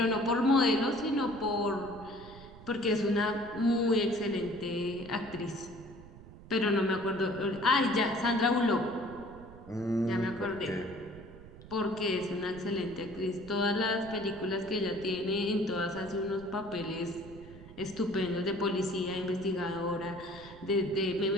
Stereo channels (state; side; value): noise; right; rumble, 18 dB below the sound